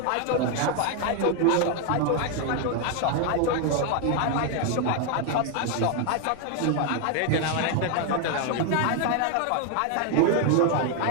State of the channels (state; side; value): different; both; correlation 0.01